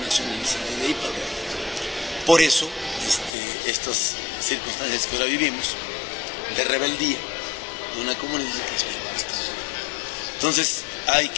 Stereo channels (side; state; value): right; drops out; at 3.3 s